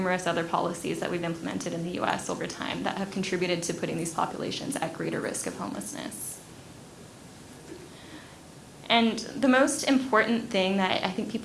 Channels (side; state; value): both; identical; correlation 1.00